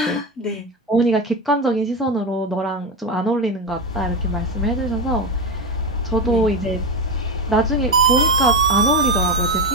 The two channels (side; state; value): both; normal; correlation 0.16